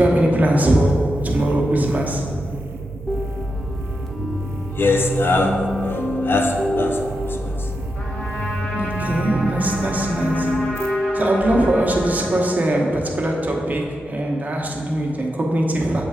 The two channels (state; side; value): normal; both; correlation 0.87